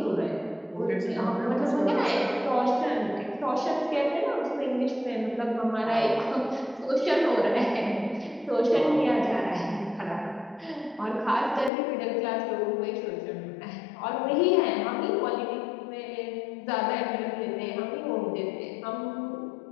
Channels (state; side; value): drops out; right; at 11.7 s